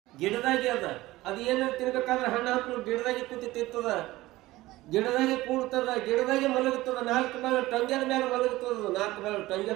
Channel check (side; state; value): left; quieter; 18.0 dB